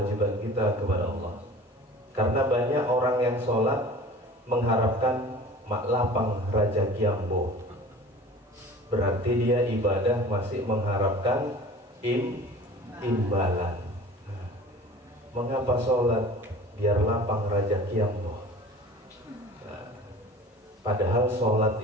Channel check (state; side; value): normal; both; correlation 0.42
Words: kita kepada Allah. Karena banyak orang yang sholat mengharapkan mak lapang raja kiambo, berarti dia ibadah masih mengharapkan imbalan. Mengapa sholat biar lapang rezeki Allah? Padahal sholat